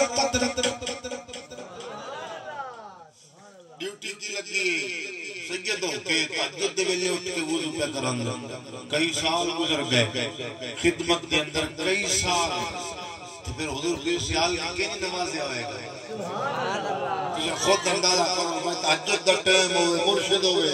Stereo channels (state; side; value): identical; both; correlation 1.00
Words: رکھی. ڈیوٹی کی لگی سیدوں کے تہجد دے ویلے اٹھ کے وضو پہ کرن, کئی سال گزر گئے خدمت کے اندر, کئی سال. پھر حضور پیر سیال کی کئی نمازیں ہوئے گئے. تجھے خود اندازہ کرو, میں تہجد دا ٹائم ہوئے, مرشد ہوئے